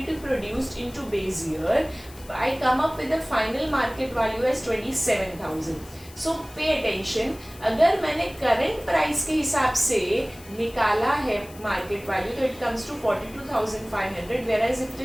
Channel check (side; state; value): left; noise; hiss, 21 dB below the sound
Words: produced into base year, I come up with the final market value as 27,000. So pay attention, अगर मैंने करंट प्राइस के हिसाब से निकाला है मार्केट वैल्यू, तो it comes to 42,500, whereas if it